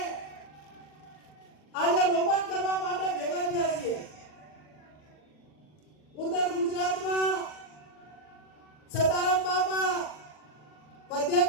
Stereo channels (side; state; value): right; late; 40 ms